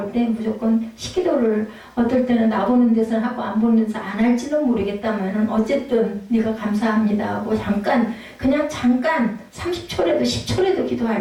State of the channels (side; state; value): both; identical; correlation 1.00